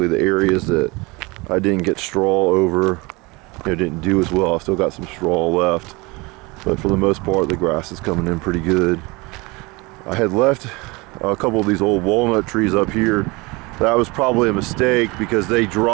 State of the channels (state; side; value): quieter; left; 25.2 dB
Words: the areas that I didn't get straw over, didn't do as well. I still got some straw left, but for the most part the grass is coming in pretty good. I had left a couple of these old walnut trees up here. That was probably a mistake because they